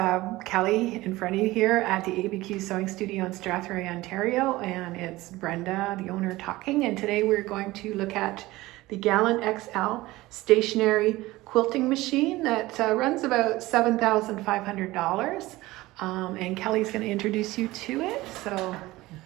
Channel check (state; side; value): quieter; left; 18.8 dB